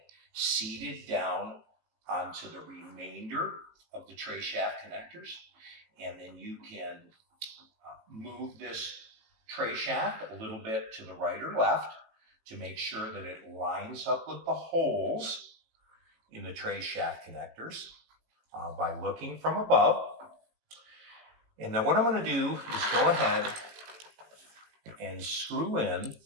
seated down onto the remainder of the tray shaft connectors. And then you can move this tray shaft a little bit to the right or left to make sure that it lines up with the holes in the tray shaft connectors by looking from above. And then what I'm going to do is go ahead and screw in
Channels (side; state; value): left; late; 18 ms